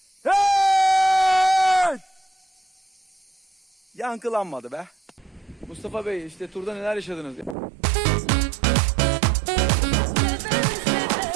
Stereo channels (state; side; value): drops out; left; at 7.6 s